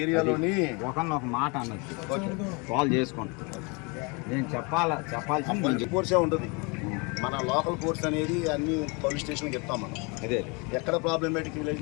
ఏరియాలోని ఒక మాట అన్నట్టు కాల్ చేసుకోండి. నేను చెప్పాల్సింది కోర్సే ఉంటుంది. మన లోకల్ కోర్స్ అనేది అన్ని పోలీస్ స్టేషన్కి చెప్తాం మనం. అదే ఎక్కడ ప్రాబ్లమేటిక్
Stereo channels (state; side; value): quieter; right; 30.2 dB